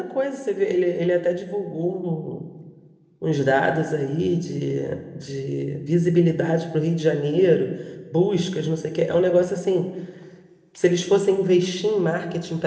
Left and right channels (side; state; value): both; identical; correlation 1.00